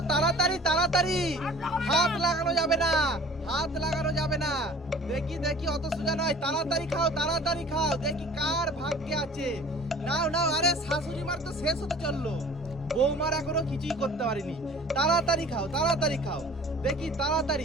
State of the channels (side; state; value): both; normal; correlation 0.47